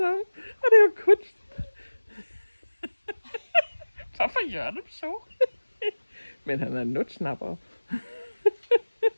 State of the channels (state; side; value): inverted; both; correlation -1.00